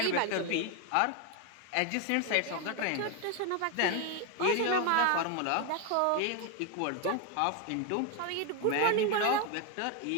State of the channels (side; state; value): both; different; correlation 0.01